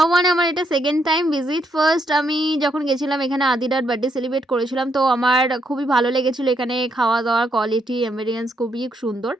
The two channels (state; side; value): normal; both; correlation 0.76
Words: ওয়ানে আমার এটা সেকেন্ড টাইম ভিজিট। ফার্স্ট আমি যখন গেছিলাম এখানে আদিরার বার্থডে সেলিব্রেট করেছিলাম, তো আমার খুবই ভালো লেগেছিলো। এখানে খাওয়া দাওয়ার কোয়ালিটি এম্বিয়েন্স খুবই সুন্দর।